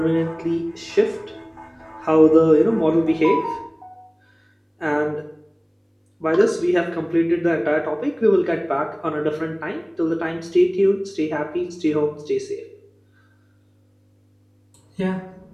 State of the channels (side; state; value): both; identical; correlation 1.00